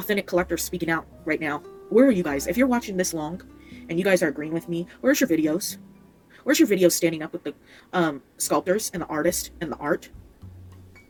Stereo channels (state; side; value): identical; both; correlation 1.00